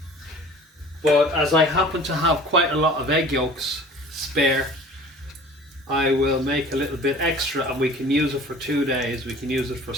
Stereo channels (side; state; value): both; normal; correlation 0.45